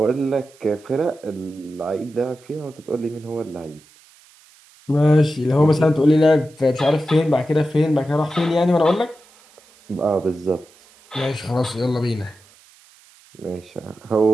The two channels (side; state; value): right; noise; hiss, 28 dB below the sound